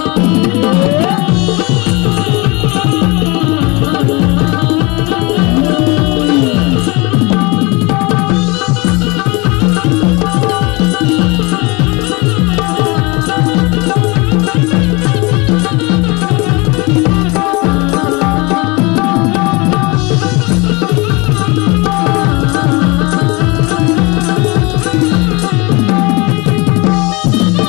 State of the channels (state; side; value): quieter; right; 26.4 dB